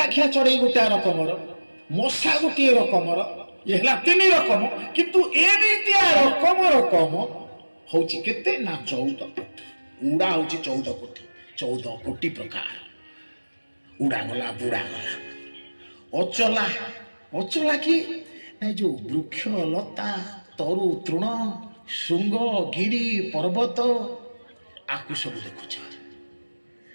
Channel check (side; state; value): both; inverted; correlation -1.00